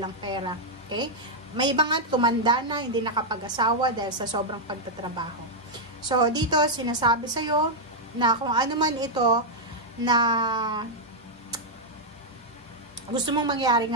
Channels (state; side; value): normal; both; correlation -0.03